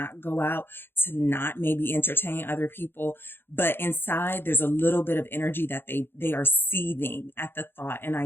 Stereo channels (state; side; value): late; right; 0.10 ms